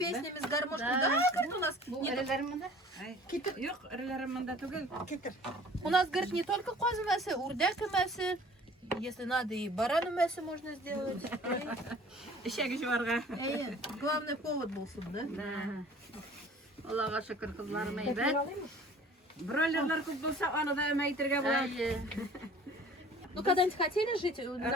с гармошкой? Да, говорит, у нас Бу не эреләремдә. Yok, ырыларымында түгел. У нас, говорит, не только козы мясо, урдяк мясо. Если надо, и барану мясо можно сделать. Ишәге жуарга. Главный повод был суд, да? Аллага шөкер кызларым Метрін әйбәт. алайынмы? Бройлерлар күп булса, аны да мәйтергә була. Ну, когда-нибудь хотели жить?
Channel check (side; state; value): both; normal; correlation 0.48